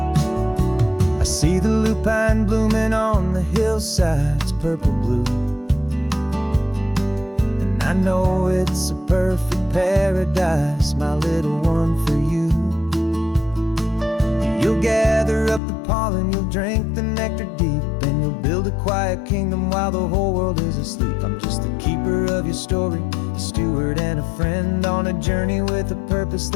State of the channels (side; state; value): right; drops out; at 15.6 s